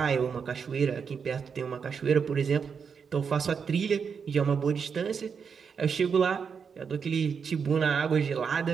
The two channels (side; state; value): left; quieter; 6.3 dB